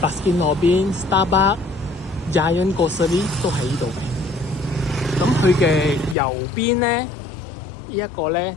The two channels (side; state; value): right; drops out; at 6.2 s